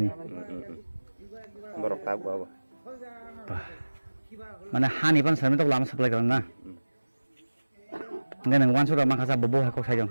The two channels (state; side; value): inverted; both; correlation -1.00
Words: নি borok ta bo মানে হানি পান সামনে তো লামা সাপ্লাই করেন না ngan nang wansu ma khasa bobo ha ko sai jong